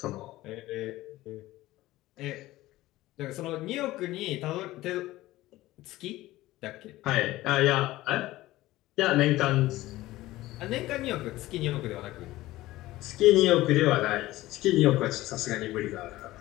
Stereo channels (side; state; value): right; quieter; 17.1 dB